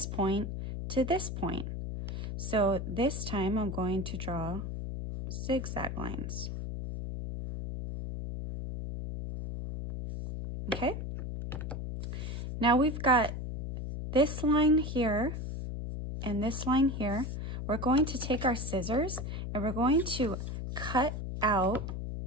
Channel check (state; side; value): noise; left; hum, 5 dB below the sound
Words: point to this point. So this time I'm going to draw zigzag lines. Okay, now we've got this line here and this line here. We're going to take our scissors and we're going to cut out